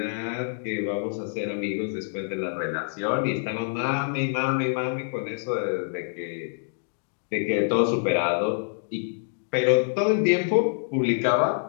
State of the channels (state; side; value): silent; right; digital silence